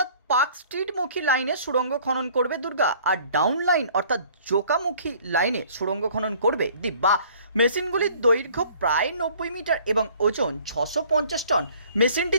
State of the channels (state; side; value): inverted; both; correlation -0.54